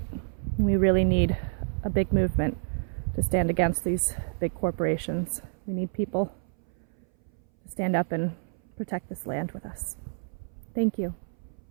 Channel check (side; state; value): left; silent; 59 dB below the other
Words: We really need a big movement to stand against these big corporations. We need people to stand up and protect this land with us. Thank you